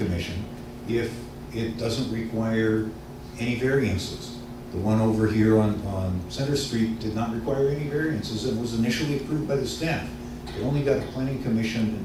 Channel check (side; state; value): both; identical; correlation 1.00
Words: if it doesn't require any variances. The one over here on Center Street did not require any variances and was initially approved by the staff. It only got a planning commission